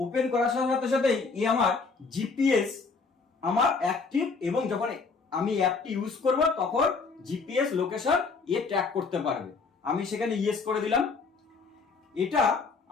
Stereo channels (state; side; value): quieter; right; 4.6 dB